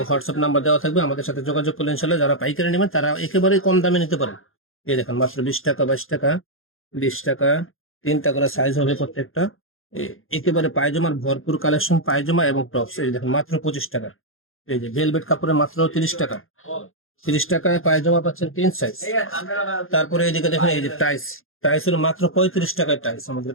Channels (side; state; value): right; late; 0.60 ms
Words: হোয়াটসঅ্যাপ নাম্বার দেওয়া থাকবে, আমাদের সাথে যোগাযোগ করলে ইনশাল্লাহ যারা পাইকারি নেবেন তারা একেবারে কম দামে নিতে পারেন। এই দেখেন মাত্র 20 টাকা, 22 টাকা, 20 টাকা, 3টা করে সাইজ হবে প্রত্যেকটা। একেবারে পায়জামার ভরপুর কালেকশন, পায়জামা এবং টপস এই দেখেন মাত্র 25 টাকা। এই যে ভেলভেট কাপড়ে মাত্র 30 টাকা, 30 টাকায় পায়জামা পাচ্ছেন 3 সাইজ। তারপরে এইদিকে দেখেন এই যে টাইস, টাইসের মাত্র 35 টাকায় টাইস আমাদের